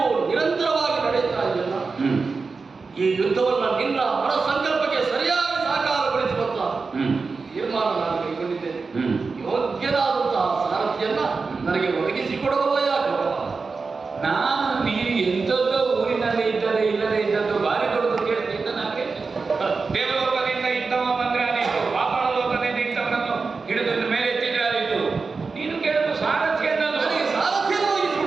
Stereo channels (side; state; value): left; quieter; 4.5 dB